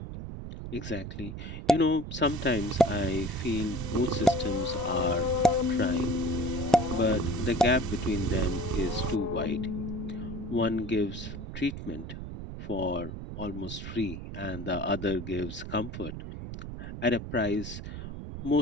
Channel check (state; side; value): noise; right; rumble, 8 dB below the sound